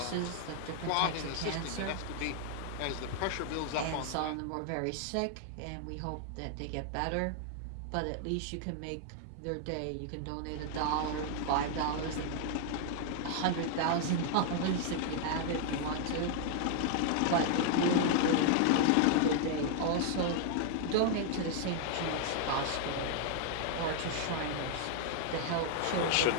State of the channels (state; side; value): different; both; correlation 0.00